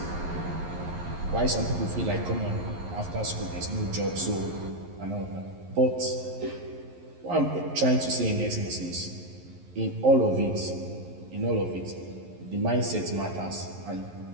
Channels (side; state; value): left; late; 11 ms